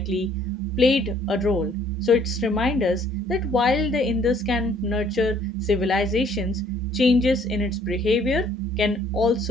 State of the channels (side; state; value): both; normal; correlation 0.60